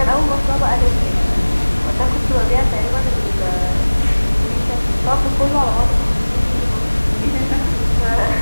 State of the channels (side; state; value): both; inverted; correlation -1.00